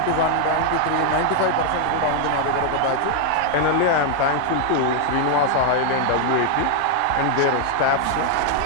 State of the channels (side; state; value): both; different; correlation 0.00